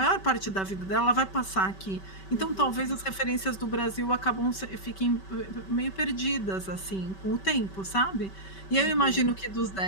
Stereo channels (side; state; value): right; late; 5.2 ms